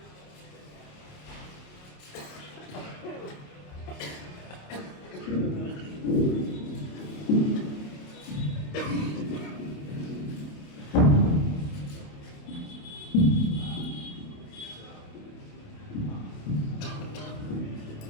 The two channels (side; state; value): right; late; 28 ms